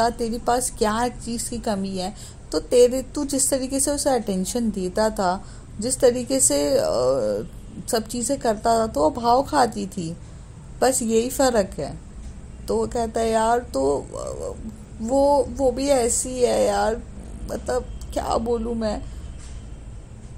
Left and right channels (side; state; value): both; identical; correlation 1.00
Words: तेरे पास क्या चीज़ की कमी है? तो तू जिस तरीके से उसे अटेंशन देता था, जिस तरीके से सब चीज़ें करता था, तो वो भाव खाती थी। बस यही फ़र्क है। तो वो कहता है यार तो वो भी ऐसी है यार, मतलब क्या बोलूँ मैं।